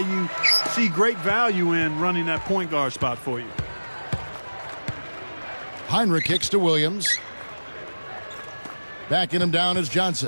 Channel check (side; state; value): both; inverted; correlation -1.00